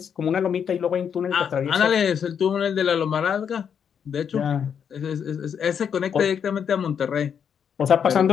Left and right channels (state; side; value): quieter; right; 7.7 dB